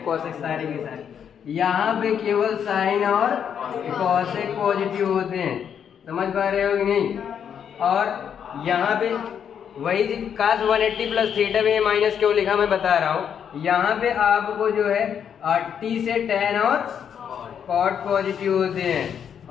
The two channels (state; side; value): quieter; right; 8.2 dB